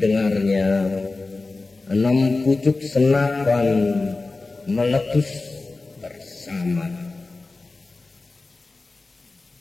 6 pucuk senapan meletus bersama.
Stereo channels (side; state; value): right; quieter; 3.5 dB